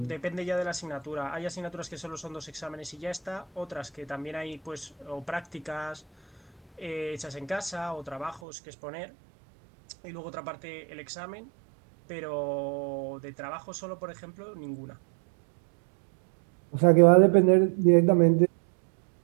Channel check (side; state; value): left; drops out; at 8.4 s